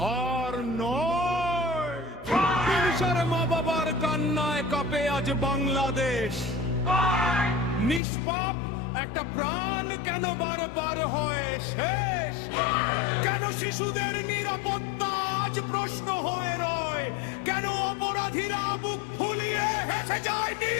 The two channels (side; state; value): right; drops out; at 8.0 s